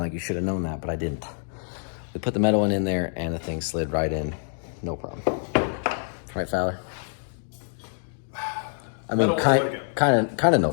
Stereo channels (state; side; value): silent; right; digital silence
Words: you should have known that, but I didn't. We put the metal one in there and the thing slid right in, no problem. Right, Fowler? I mean, kind of no